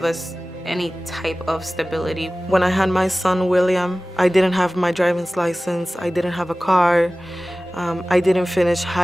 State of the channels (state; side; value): normal; both; correlation 0.97